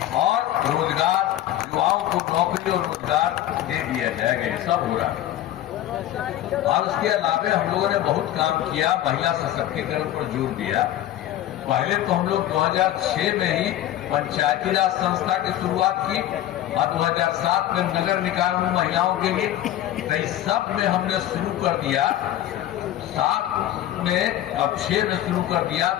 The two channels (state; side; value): quieter; right; 12.9 dB